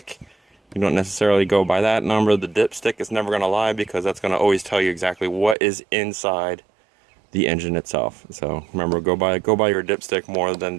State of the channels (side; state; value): left; drops out; at 5.6 s